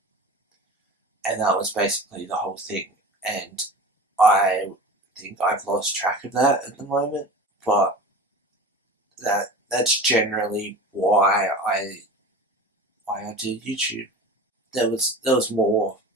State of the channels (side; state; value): both; normal; correlation 0.34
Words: and that was basically the whole thing. And I think I've lost track of that at the moment, but that's generally why I do YouTube. There was more.